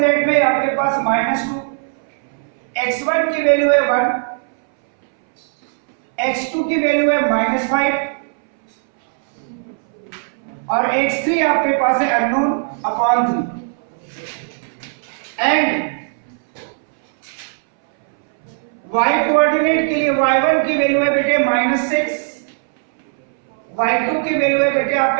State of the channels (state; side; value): silent; left; 64 dB below the other